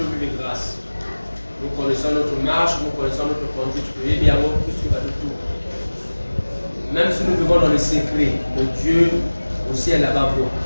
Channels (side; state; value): both; inverted; correlation -1.00